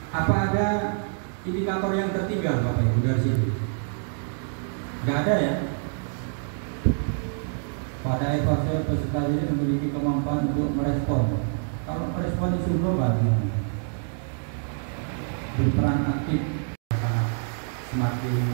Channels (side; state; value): left; silent; 61 dB below the other